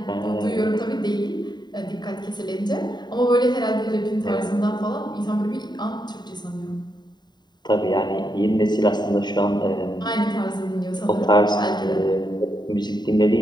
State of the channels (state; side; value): late; right; 0.21 ms